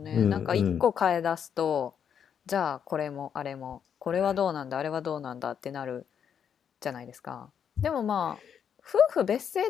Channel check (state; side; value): quieter; right; 8.0 dB